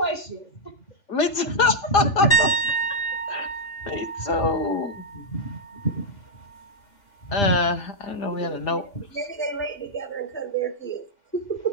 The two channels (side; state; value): right; late; 2.8 ms